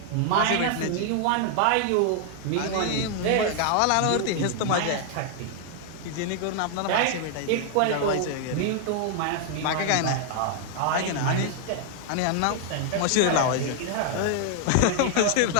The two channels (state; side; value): different; both; correlation 0.00